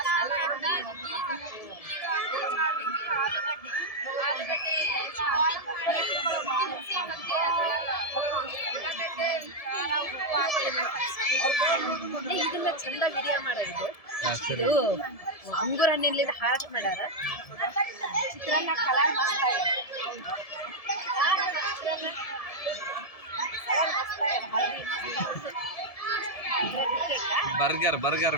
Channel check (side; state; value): right; late; 1.7 ms